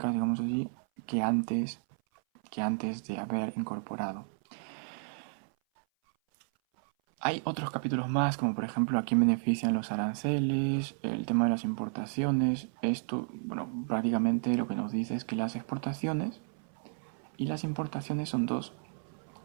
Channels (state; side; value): silent; left; 56 dB below the other